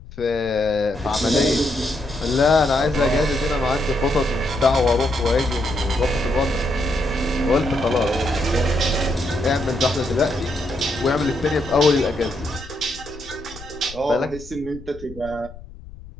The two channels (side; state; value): left; noise; rumble, 17 dB below the sound